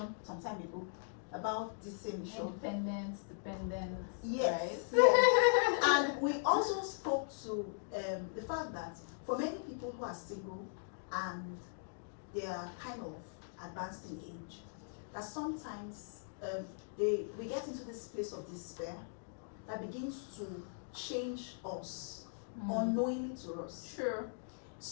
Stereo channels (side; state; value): right; silent; digital silence